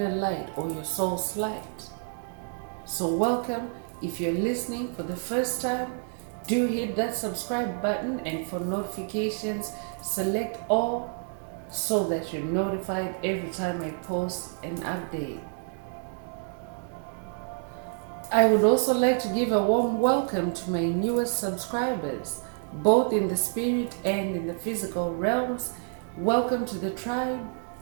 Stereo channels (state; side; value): silent; left; 56 dB below the other